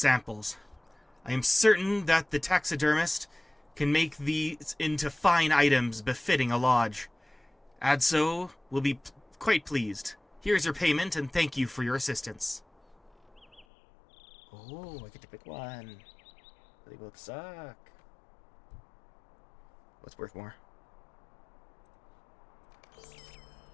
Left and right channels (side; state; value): right; drops out; at 13.7 s